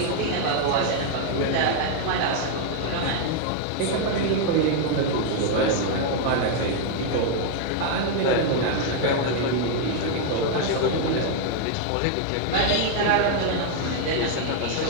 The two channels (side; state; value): both; different; correlation 0.00